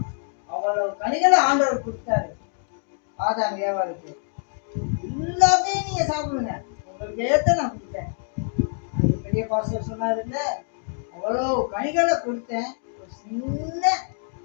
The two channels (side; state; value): right; silent; 62 dB below the other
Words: அவ்வளவு கனிகளை ஆண்டவர் கொடுத்தாரு ஆதாம் ஏவாளுக்கு. எல்லாத்தையும் நீங்க சாப்பிடுங்க, உங்களுக்கு ஏத்த நான் கொடுத்தேன். அது பெரிய பாஸ்டர் சொன்னாரு இல்ல, அவ்வளோ கனிகளை கொடுத்தேன், ஒரு சின்ன